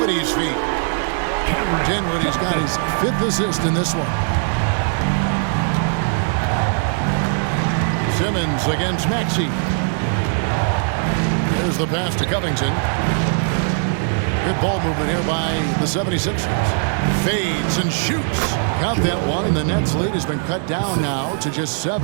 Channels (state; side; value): silent; left; 66 dB below the other